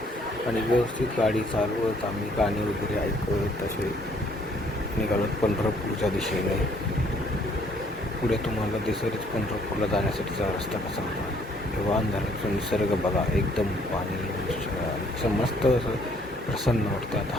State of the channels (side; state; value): both; normal; correlation 0.63